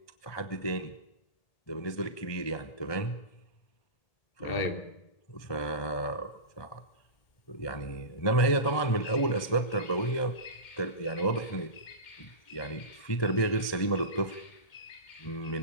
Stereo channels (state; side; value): late; right; 1.2 ms